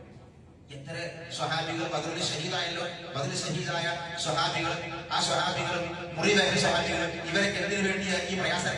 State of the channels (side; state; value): both; identical; correlation 1.00